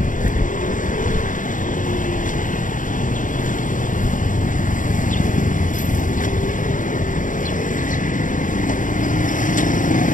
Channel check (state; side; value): late; right; 0.38 ms